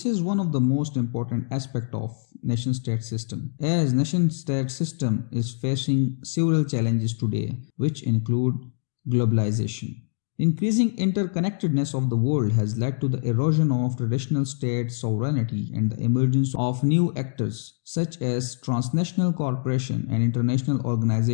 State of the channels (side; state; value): right; silent; digital silence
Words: is one of the most important aspects of nation-state system, as nation-state system is facing several challenges today, which include globalization. Increasing interconnectedness of the world has led to the erosion of traditional state sovereignty and the emergence of new actors such as transnational corporations and international